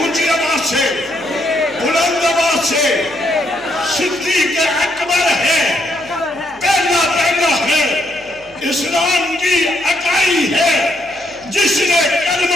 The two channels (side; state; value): left; noise; hum, 28 dB below the sound